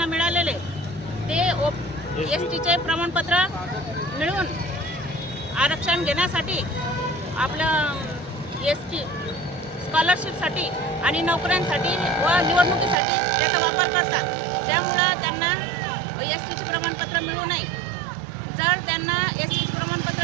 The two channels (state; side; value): drops out; left; at 13.0 s